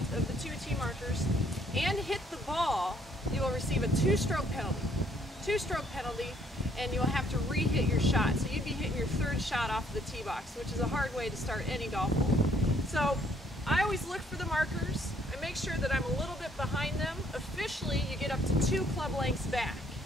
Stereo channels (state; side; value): normal; both; correlation 0.66